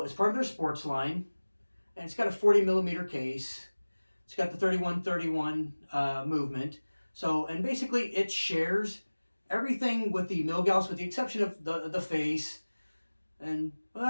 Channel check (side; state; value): both; inverted; correlation -1.00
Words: it's part of their sports line, and it's got a 40 millimeter case. It's got the 3131 movement. So, and basically it shares everything with the Milgauss, with the exception of the face, and